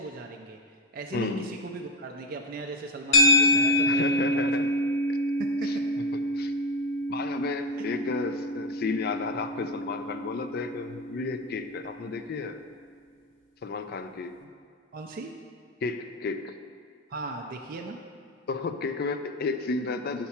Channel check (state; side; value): normal; both; correlation 0.10